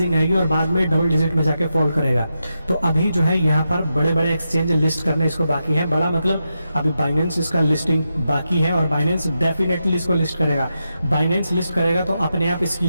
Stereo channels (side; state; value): both; inverted; correlation -0.87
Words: आएगी और बाद में डबल डिजिट में जाके फॉल करेगा। तो अभी जो है यहाँ पर बड़े बड़े एक्सचेंज लिस्ट करने इसको बाकी है। बड़ा मतलब अभी बाइनेंस इसका लिस्टिंग बाकी है, और बाइनेंस डेफिनेटली इसको लिस्ट करेगा। बाइनेंस लिस्ट करेगा तो अपने आप इसकी